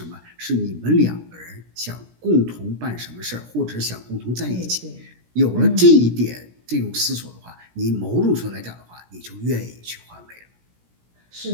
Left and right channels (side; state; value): left; late; 17 ms